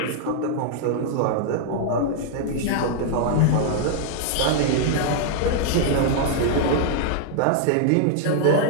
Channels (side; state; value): both; different; correlation -0.01